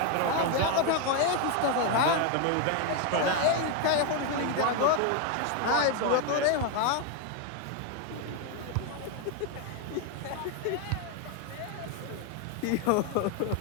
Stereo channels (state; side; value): different; both; correlation 0.01